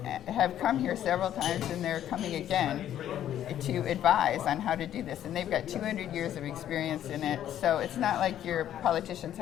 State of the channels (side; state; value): right; quieter; 11.1 dB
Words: come here several times, and they're coming again to advise on how to do this. And they've got 200 years of experience in it, so it's not like your politicians